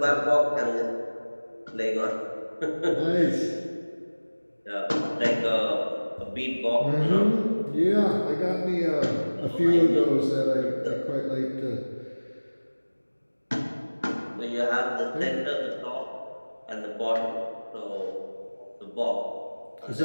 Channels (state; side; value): inverted; both; correlation -1.00